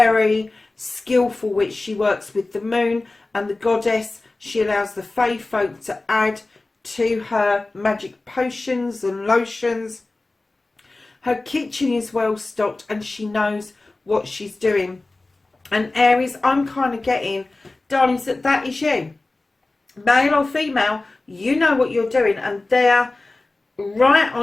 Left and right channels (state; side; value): quieter; right; 3.1 dB